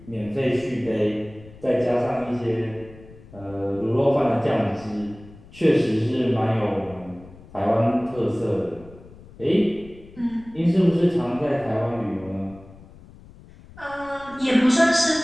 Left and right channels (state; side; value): noise; left; rumble, 21 dB below the sound